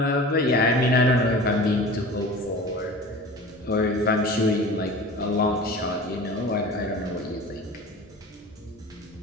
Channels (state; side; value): normal; both; correlation 0.38